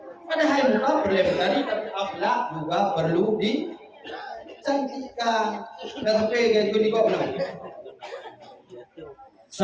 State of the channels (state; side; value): identical; both; correlation 1.00